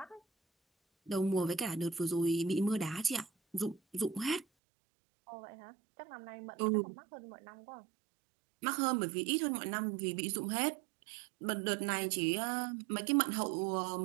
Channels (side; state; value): left; drops out; at 4.5 s